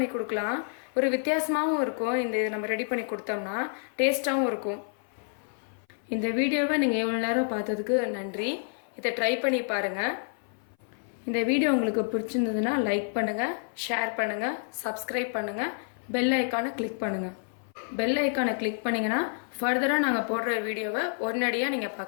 கொடுக்கலாம். ஒரு வித்தியாசமாகவும் இருக்கும். இது நம்ம ரெடி பண்ணி கொடுத்தோம்னா டேஸ்ட்டாகவும் இருக்கும். இந்த வீடியோவை நீங்கள் எவ்வளோ நேரம் பார்த்ததுக்கு நன்றி. இதை ட்ரை பண்ணி பாருங்கள். இந்த வீடியோ உங்களுக்கு பிடிச்சிருந்ததுன்னா லைக் பண்ணுங்கள், ஷேர் பண்ணுங்கள், சப்ஸ்கிரைப் பண்ணுங்கள், பெல் ஐக்கானை கிளிக் பண்ணுங்கள். பெல் ஐக்கானை கிளிக் பண்ணிங்கன்னா ஃபர்தராக நாங்கள் போடுற வீடியோவை உடனடியாக நீங்கள்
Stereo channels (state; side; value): silent; right; 58 dB below the other